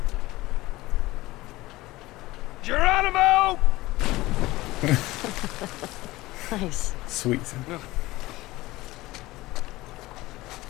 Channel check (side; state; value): right; quieter; 18.9 dB